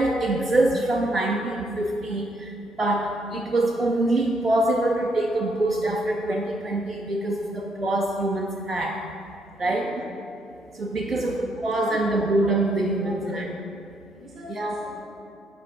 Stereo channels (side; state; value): both; normal; correlation 0.74